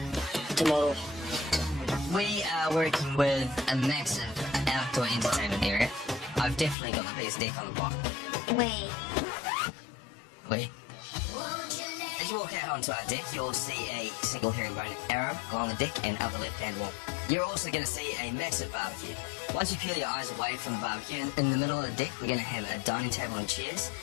tomorrow. We are working with a massive outdoor entertainment area. I've definitely got the biggest deck on the block. We. As you walk out onto our deck, you'll see a single herringbone arrow along the deck and up the left-hand wall. You're also going to see a massive barbecue. Once you peel your eyes away from the barbecue, in the middle of the deck, we're going to have a dining table and chairs,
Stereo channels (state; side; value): drops out; right; at 6.8 s